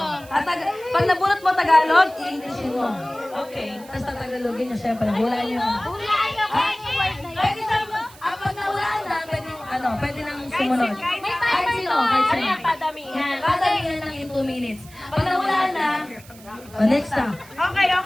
Pag nabunot mo Tagalog, i-Englishin mo. Okay. Tapos Tagalogin nyo, syempre, hulaan nyo. Hulaan niyo kung ano yung word na yun. Pwede na, pag nahulaan na, pwede nang sumunod. Kahit sino, kahit sino. Kaya padamihan. Padamihan lang in 2 minutes. Pag nahulaan na, next na. Okay,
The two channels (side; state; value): right; noise; hiss, 22 dB below the sound